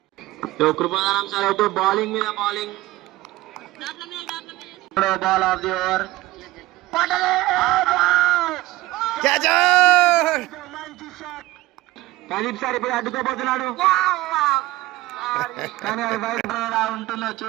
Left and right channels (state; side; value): quieter; left; 18.2 dB